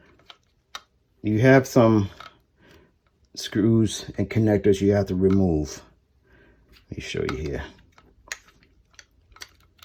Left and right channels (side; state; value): both; identical; correlation 1.00